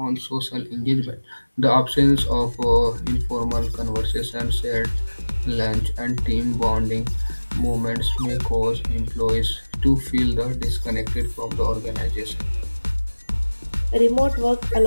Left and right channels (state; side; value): inverted; both; correlation -1.00